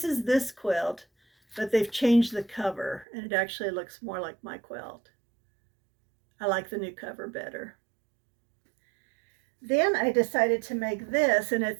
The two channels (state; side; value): drops out; left; at 3.1 s